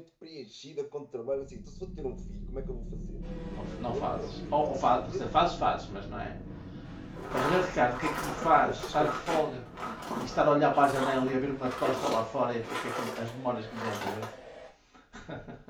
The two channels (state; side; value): identical; both; correlation 1.00